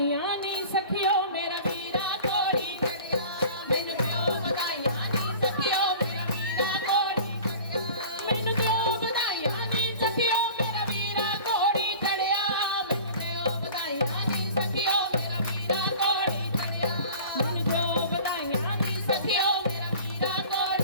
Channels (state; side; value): inverted; both; correlation -0.42